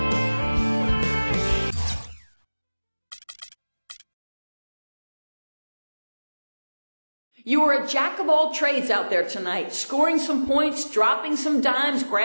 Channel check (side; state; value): both; inverted; correlation -1.00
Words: You are a jack of all trades out there tonight, scoring some points, dropping some dimes,